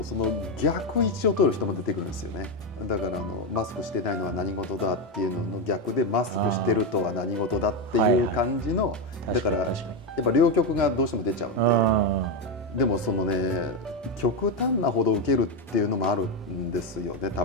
その逆位置を取る人も出てくるんですよね。だからマスクしてないのは何事だっていうのの逆で、マスクしてるとは何事だっていう感じの、だからやっぱ両極がどうしても出ちゃうんで、でもそのね、極端なほど受けるっていうのもあるんですよね、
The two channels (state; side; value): normal; both; correlation 0.08